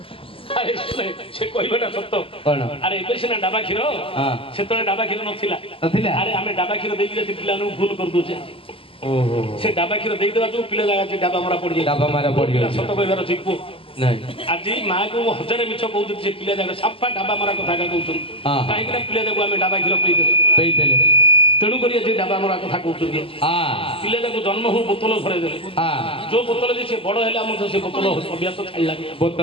अरे से कहबाटा सत्य अरे एबे सिना डाबा କ୍ଷୀର सेतले डाबा କ୍ଷୀର नथिला अरे आमे डाबा କ୍ଷୀर देई जे पिला नु भूल कर दोचे ओहो से डाबा କ୍ଷୀर देई देबा जो पिला जागा जे डाबा मारा पड़ जाय सत्य कहबार छिपु नहीं आज माँ को 1000 मिछ कहू जे पिला जागा साफा डाबा मारा कथा का कहउछन काहे कि पिला जाको आमे डाबा କ୍ଷୀर पेई देले तेणु करी जे डाबा मारा कथा कहउछन पिला जाको जन्म हो बोतल भरे देले जो बोतल जे से बड़ हैला हम से बोतल अभ्यास छाड़ला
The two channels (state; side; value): late; right; 0.26 ms